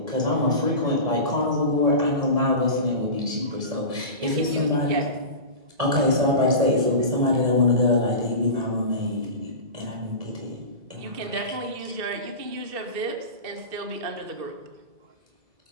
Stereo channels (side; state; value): left; late; 1.8 ms